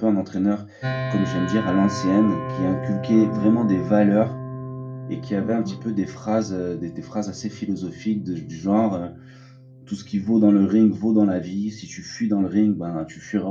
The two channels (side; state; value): both; identical; correlation 1.00